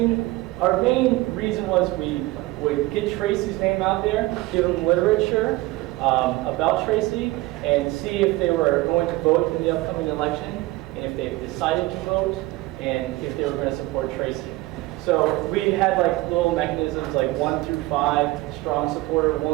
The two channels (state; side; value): quieter; left; 19.8 dB